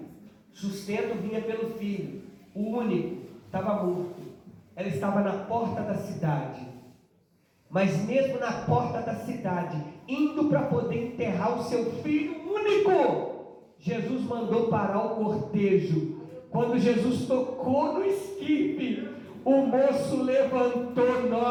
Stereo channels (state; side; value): identical; both; correlation 1.00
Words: Sustento vinha pelo filho. O único estava morto. Ela estava na porta da cidade. Mas mesmo na porta da cidade, indo para poder enterrar o seu filho único, Jesus mandou parar o cortejo. Quando Jesus tocou no esquife, o moço levantou